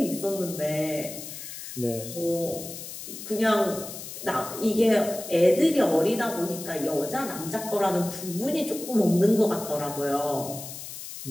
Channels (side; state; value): left; noise; hiss, 10 dB below the sound